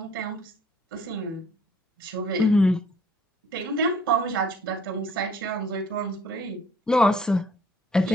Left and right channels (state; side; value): normal; both; correlation 0.58